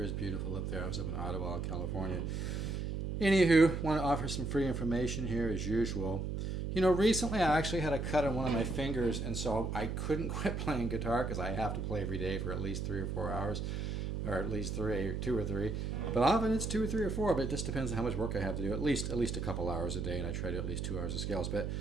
is beautiful up there. I was up in Ottawa, California. Anywho, want to offer some free information here as usual. You know, recently I actually had a cut on one of my fingers, and so I couldn't quit playing guitar because I have to play every day for at least 3 or 4 hours, or at least 2 or 3. But often it's 2 or 3 or 4, but it just depends on how much work I have to do. At least a couple hours a day, and I try to do at least 2 hours of scales. But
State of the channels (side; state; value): right; noise; hum, 2 dB below the sound